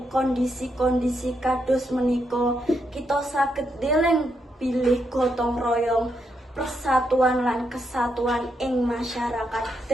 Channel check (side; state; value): both; normal; correlation 0.80